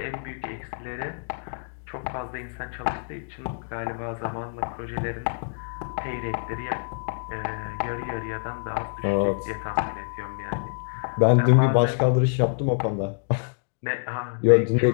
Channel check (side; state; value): right; silent; digital silence